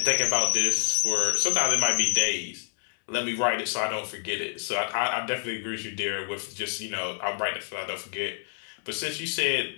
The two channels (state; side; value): silent; right; 60 dB below the other